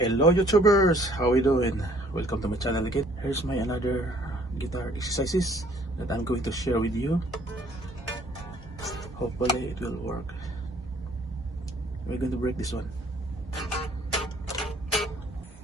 Hello YouTubers, how we doing? Welcome to my channel again. Here's my another guitar exercises that I'm going to share with you. Hopefully it will work. We're going to break this one.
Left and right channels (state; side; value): normal; both; correlation 0.59